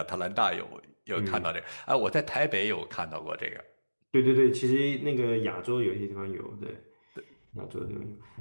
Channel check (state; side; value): inverted; both; correlation -1.00